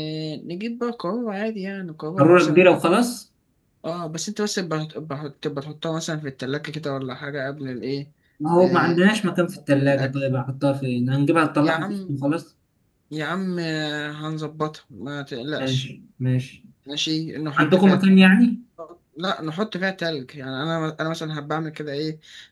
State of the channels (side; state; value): both; identical; correlation 1.00